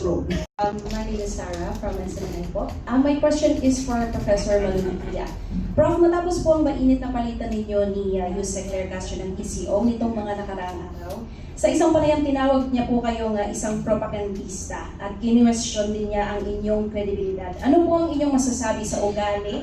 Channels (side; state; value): both; identical; correlation 1.00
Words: My name is Sarah from SNN po. My question is for Professor Malupitia. Prof, matapos po ang mainit na palitan ninyo ni Yusek Claire Castro ng PCO nitong mga nakaraang araw, sa isang panayam tinawag niya po kayong isang propagandista at kinwestiyon din niya ang inyong kredibilidad. Ano po ang inyong masasabi sa